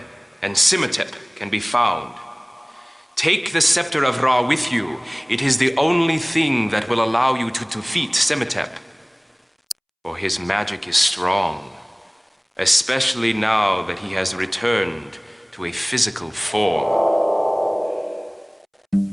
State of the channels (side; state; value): both; identical; correlation 1.00